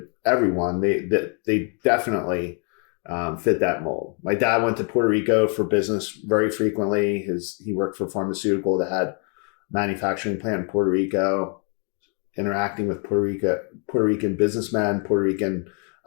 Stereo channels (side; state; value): right; quieter; 39.2 dB